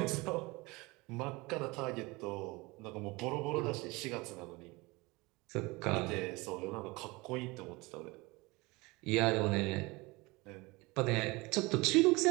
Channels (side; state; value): left; quieter; 23.9 dB